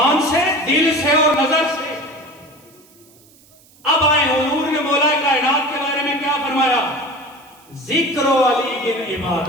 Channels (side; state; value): right; noise; hiss, 28 dB below the sound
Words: سے، دل سے اور نظر سے۔ اب آئے حضور نے مولا کائنات کے بارے میں کیا فرمایا؟ ذکر و علی گن